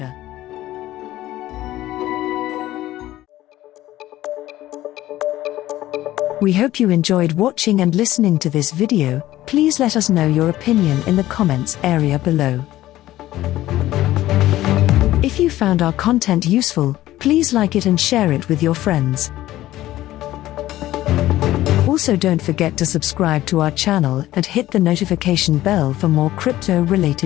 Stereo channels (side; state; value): right; quieter; 15.1 dB